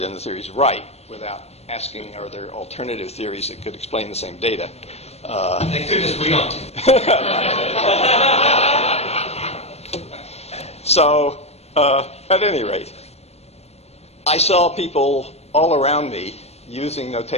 the theory is right, without asking, are there alternative theories that could explain the same data? They could just agree on. So, at any rate, I saw people all around me using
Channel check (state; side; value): late; right; 0.31 ms